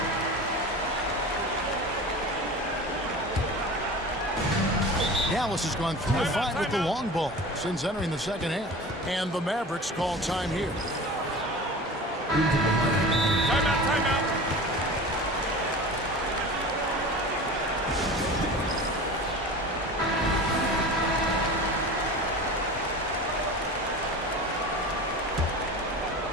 Dallas has gone 3 of 5 with the long ball since entering the second half. And the Mavericks call time here. Timeout.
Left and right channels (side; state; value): both; normal; correlation 0.35